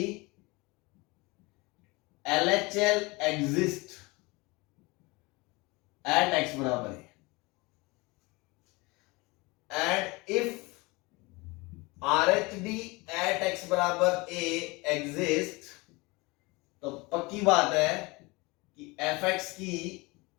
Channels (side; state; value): right; quieter; 24.7 dB